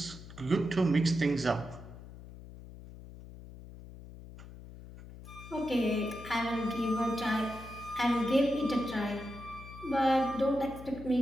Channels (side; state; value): left; noise; hum, 15 dB below the sound